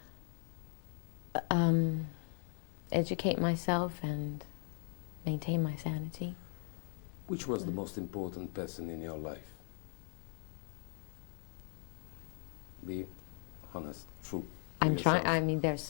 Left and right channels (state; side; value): silent; right; 52 dB below the other